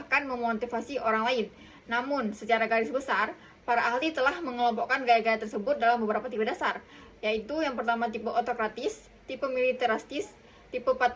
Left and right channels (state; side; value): identical; both; correlation 1.00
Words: memotivasi orang lain. Namun, secara garis besar, para ahli telah mengelompokkan gaya-gaya tersebut dalam beberapa tipe dasar, yaitu yang pertama tipe otokratis, tipe militeristis, tipe